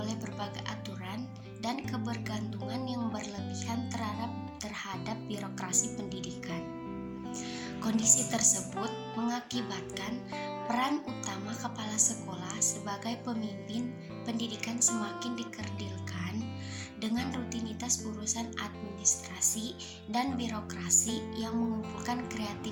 berbagai aturan dan kebergantungan yang berlebihan terhadap birokrasi pendidikan. Kondisi tersebut mengakibatkan peran utama kepala sekolah sebagai pemimpin pendidikan semakin dikerdilkan dengan rutinitas urusan administrasi dan birokrasi yang mengumpulkan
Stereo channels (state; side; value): identical; both; correlation 1.00